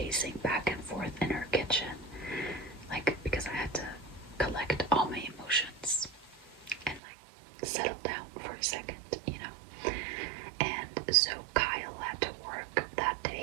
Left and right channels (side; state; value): left; drops out; at 7.0 s